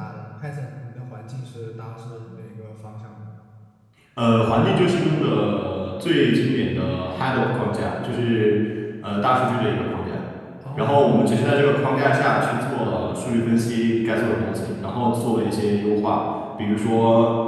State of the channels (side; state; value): both; identical; correlation 1.00